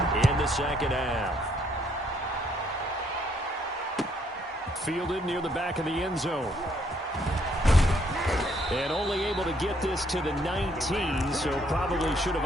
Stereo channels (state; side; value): normal; both; correlation 0.69